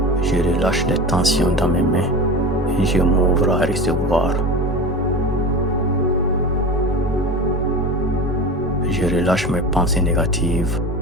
Je relâche les tensions dans mes mains et je m'ouvre à recevoir. Je relâche mes pensées négatives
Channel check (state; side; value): normal; both; correlation 0.30